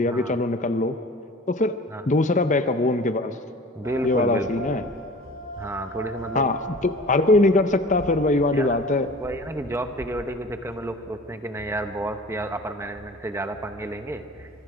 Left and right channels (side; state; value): both; normal; correlation 0.42